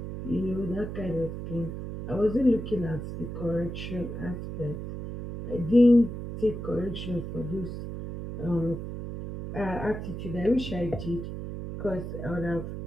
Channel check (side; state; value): right; noise; hum, 7 dB below the sound